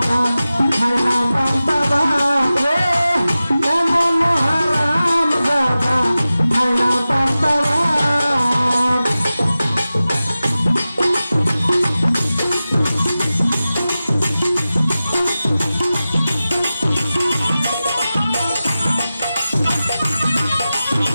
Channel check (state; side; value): inverted; both; correlation -0.95